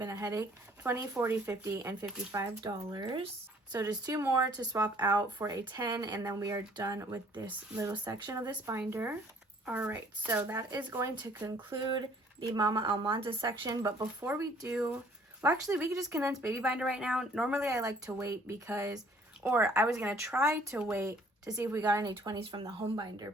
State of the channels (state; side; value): normal; both; correlation 0.58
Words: a headache. 20, 40, 50, and $55. So just 2 more to swap out for a 10, and then we are done with this little section of this binder. All right, so that is going to conclude the Mama Almanda section. But before we do, well, actually, we could just condense baby binder right now. Normally, I like to wait because, or I was going to try to wait to see if we got any 20s from the home